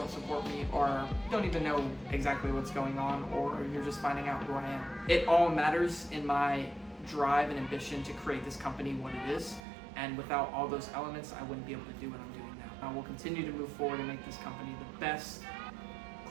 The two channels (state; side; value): drops out; left; at 9.6 s